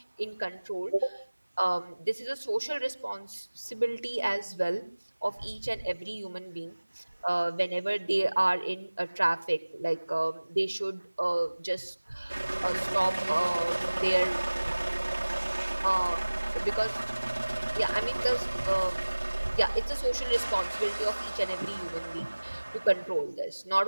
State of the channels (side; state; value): both; inverted; correlation -1.00